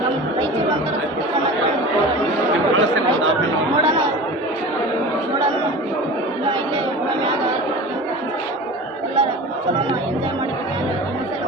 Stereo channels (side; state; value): both; normal; correlation 0.35